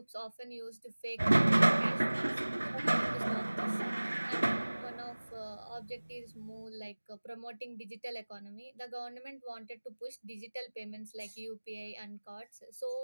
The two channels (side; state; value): both; inverted; correlation -1.00